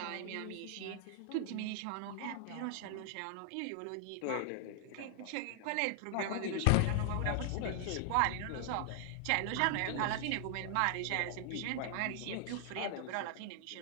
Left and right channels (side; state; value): both; different; correlation 0.00